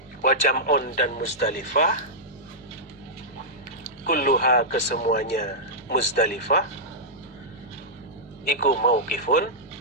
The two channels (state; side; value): normal; both; correlation -0.11